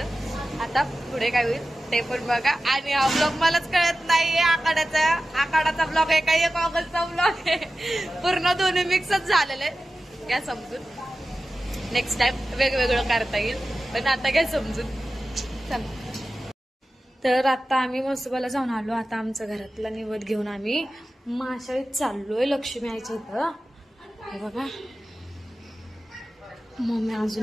आता पुढे काय होईल ते पण बघा. आणि हा ब्लॉग मलाच कळत नाहीये. आखाडाचा ब्लॉग आहे का एक ऑगस्टचा ब्लॉग आहे. पूर्ण दोन्ही मिक्सच झालेले आहे. घ्या समजून. नेक्स्ट टाइम वेगवेगळं करता येईल पण आता घ्या समजून. चला. तर आता आम्ही मसुबाला जाऊन आलो. आता आमचं घरातला निवद घेऊन आम्ही माशाळीत चाललोय लक्ष्मी आईच्या इथं. हे बघा मम्मी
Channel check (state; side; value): normal; both; correlation 0.94